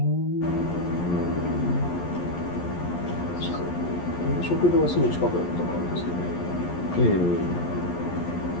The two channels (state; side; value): late; right; 11 ms